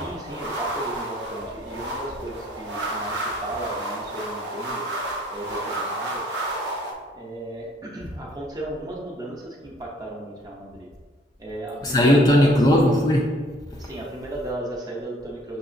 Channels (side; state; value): both; normal; correlation 0.59